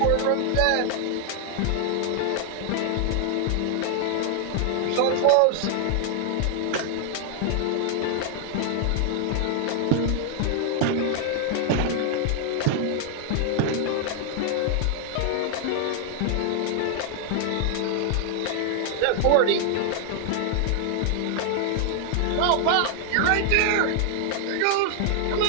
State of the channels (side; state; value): both; different; correlation 0.00